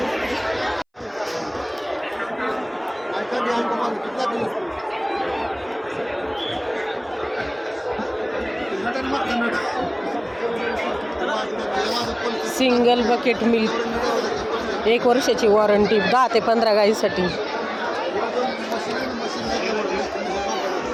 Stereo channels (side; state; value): both; identical; correlation 1.00